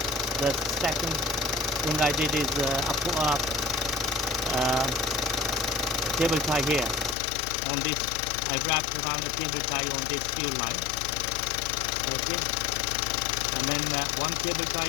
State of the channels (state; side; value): drops out; right; at 7.2 s